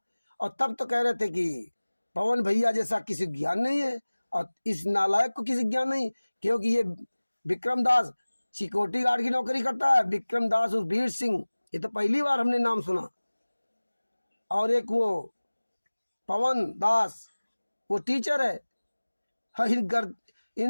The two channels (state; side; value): inverted; both; correlation -1.00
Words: और तब तो कह रहे थे कि पवन भैया जैसा किसी ज्ञान नहीं है, और इस नालायक को किसी ज्ञान नहीं, क्योंकि ये विक्रम दास सिक्योरिटी गार्ड की नौकरी करता है। विक्रम दास उस वीर सिंह, ये तो पहली बार हमने नाम सुना। और एक वो पवन दास वो टीचर है। हाँ,